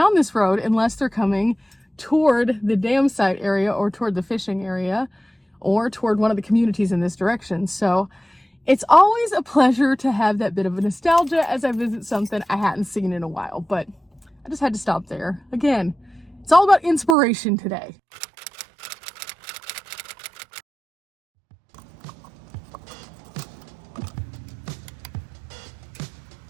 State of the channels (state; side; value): drops out; left; at 17.2 s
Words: this road unless they're coming toward the dam site area or toward the fishing area or toward one of the communities in this direction. So it's always a pleasure to have that bit of a nostalgia as I visit something I hadn't seen in a while, but I just had to stop there. Again, it's all about inspiration today.